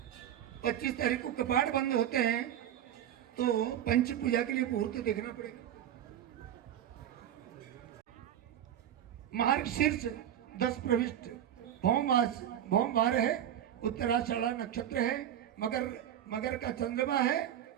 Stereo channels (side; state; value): left; quieter; 10.6 dB